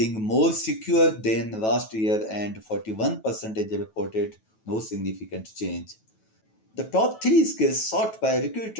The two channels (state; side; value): late; right; 9.2 ms